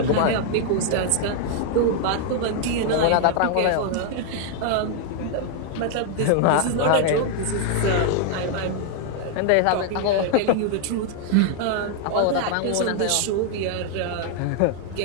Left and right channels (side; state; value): both; different; correlation 0.00